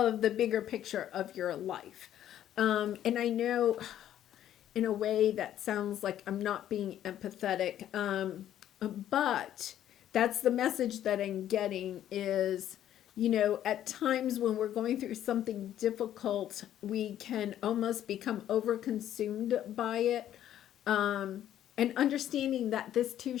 the bigger picture of your life. And I know in a way that sounds like I'm not being empathetic, but that's the message that I'm getting is, at times when we're going through something difficult, we can almost become overconsumed by it, and understanding that this too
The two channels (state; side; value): quieter; right; 11.4 dB